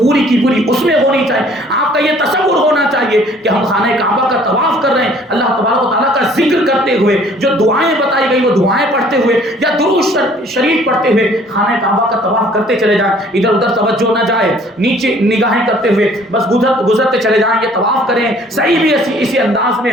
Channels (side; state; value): both; normal; correlation 0.56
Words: کی پوری اس میں ہونی چاہیے، آپ کا یہ تصور ہونا چاہیے کہ ہم خانہ کعبہ کا طواف کر رہے ہیں، اللہ تبارک و تعالیٰ کا ذکر کرتے ہوئے، جو دعائیں بتائی گئی وہ دعائیں پڑھتے ہوئے یا درود شریف پڑھتے ہوئے خانہ کعبہ کا طواف کرتے چلے جائیں، ادھر ادھر توجہ نہ جائے، نیچے نگاہیں کرتے ہوئے بس گزرتے چلے جائیں، یہ طواف کریں، صحیح بھی اسی انداز میں